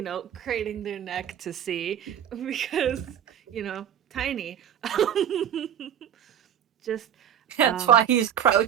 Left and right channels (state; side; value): quieter; left; 9.5 dB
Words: craning their neck to see, because, tiny. Just That's why he's